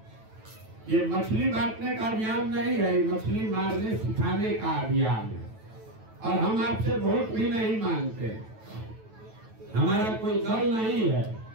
ये मछली बांटने का अभियान नहीं है, मछली मारने सिखाने का अभियान है। और हम आपसे वोट भी नहीं मांगते, हमारा कोई दल नहीं है,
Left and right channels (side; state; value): left; late; 9.1 ms